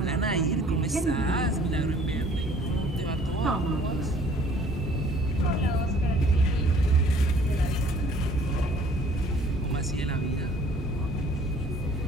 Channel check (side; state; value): both; normal; correlation 0.55